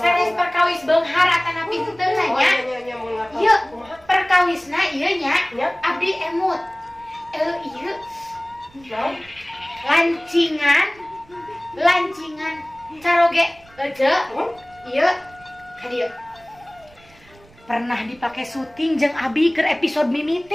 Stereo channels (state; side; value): noise; right; rumble, 27 dB below the sound